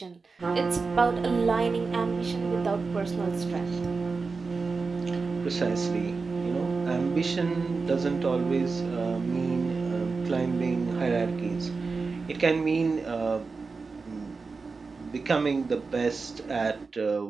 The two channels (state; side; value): quieter; left; 4.4 dB